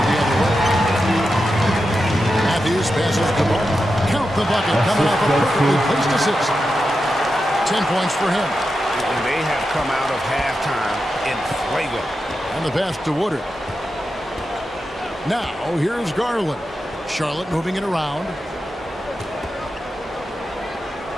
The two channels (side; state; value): both; normal; correlation 0.89